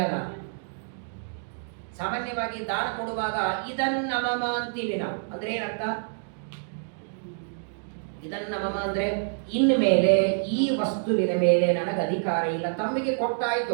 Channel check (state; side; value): silent; left; digital silence